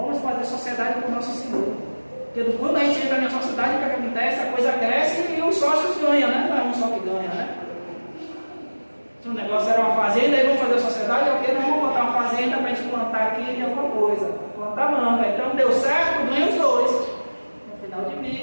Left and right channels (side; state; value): both; inverted; correlation -1.00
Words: vamos fazer sociedade com o nosso Senhor. Porque quando a gente entra na sociedade, o que acontece? A coisa cresce e os sócios ganham, né? Não é um só que ganha, né? Se o negócio era uma fazenda, aí vamos fazer a sociedade, ok? Nós vamos botar uma fazenda para a gente plantar aqui de alguma coisa. Plantar manga. Então deu certo, ganha os 2. No final